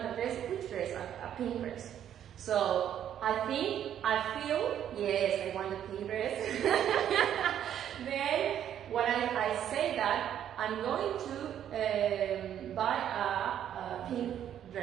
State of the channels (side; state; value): left; quieter; 10.1 dB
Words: a dress. Which dress? A pink dress. So I feel, yes, I want a pink dress. Then when I say that, I'm going to buy a pink